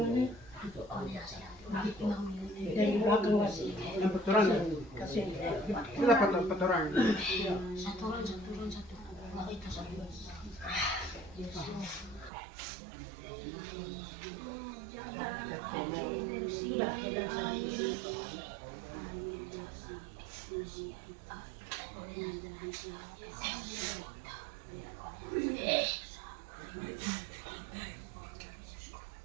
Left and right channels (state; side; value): drops out; left; at 12.3 s